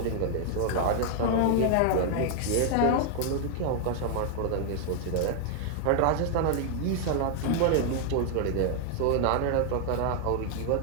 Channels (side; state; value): both; different; correlation 0.00